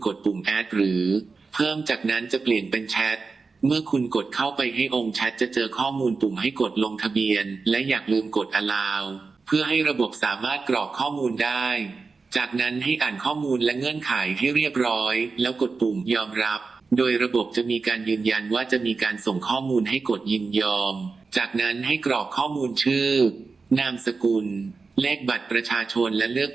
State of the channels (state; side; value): quieter; left; 4.4 dB